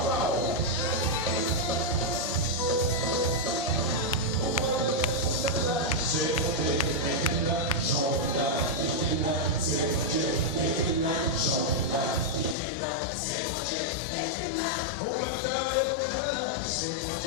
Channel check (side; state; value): right; drops out; at 12.6 s